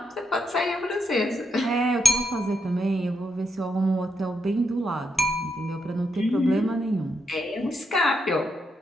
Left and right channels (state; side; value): normal; both; correlation 0.80